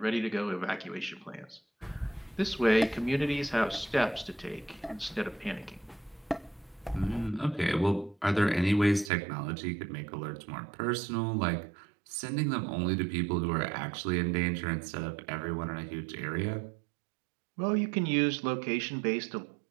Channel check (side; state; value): left; drops out; at 9.1 s